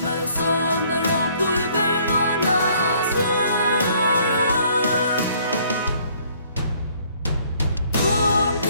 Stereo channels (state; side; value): inverted; both; correlation -0.61